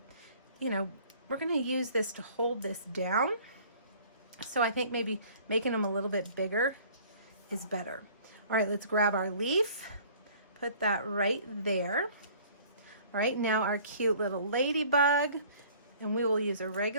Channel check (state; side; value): inverted; both; correlation -0.52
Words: you know, we're going to use this to hold this down. So I think maybe making them a little bit bigger is better. All right, let's grab our leaf, put that right there. All right, now our cute little ladybug, and we will use a